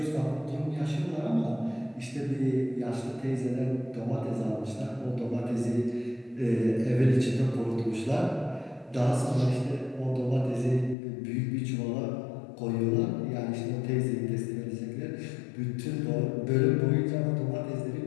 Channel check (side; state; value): right; drops out; at 11.0 s